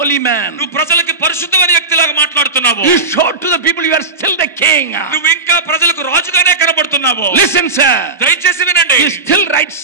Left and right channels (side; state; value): left; quieter; 3.6 dB